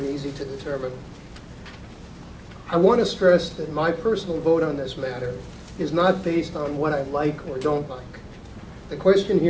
easy to determine. I want to stress that my personal vote on this matter is not based on what I like or don't like. The question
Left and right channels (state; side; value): identical; both; correlation 1.00